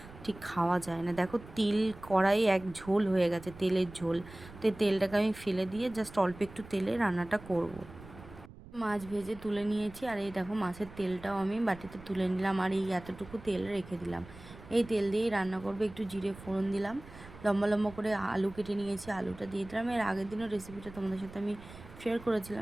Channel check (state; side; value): noise; right; rumble, 18 dB below the sound